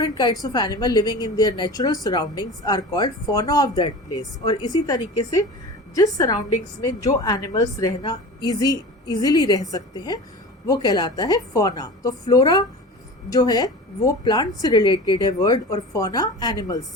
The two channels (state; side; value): normal; both; correlation 0.34